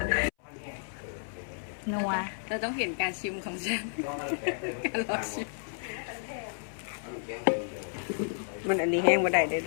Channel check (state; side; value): silent; right; 57 dB below the other